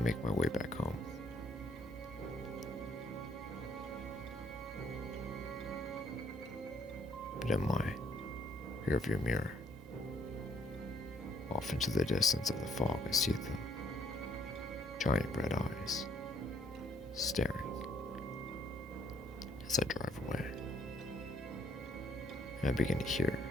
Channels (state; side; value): normal; both; correlation 0.67